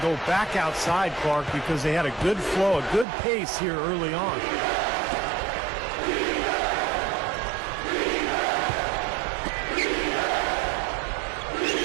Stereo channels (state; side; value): drops out; left; at 3.1 s